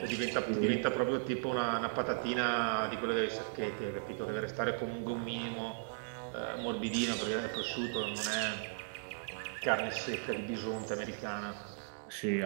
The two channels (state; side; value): silent; left; digital silence